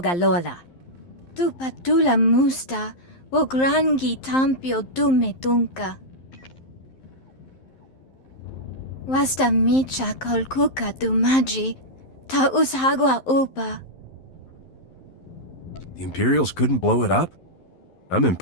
lola. Tu patula musta, wo grangi tampio dume dunka. Wasta micha kolkuka dumaji, ta ushagwa upa. The Imperials couldn't blow it up? I'm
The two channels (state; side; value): late; right; 11 ms